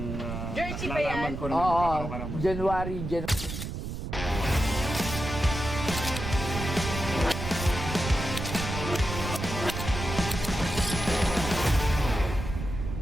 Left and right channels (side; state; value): right; noise; rumble, 5 dB below the sound